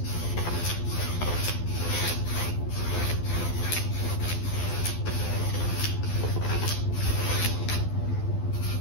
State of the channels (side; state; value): right; late; 12 ms